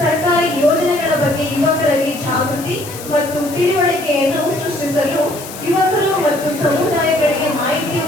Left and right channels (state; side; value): noise; left; hiss, 13 dB below the sound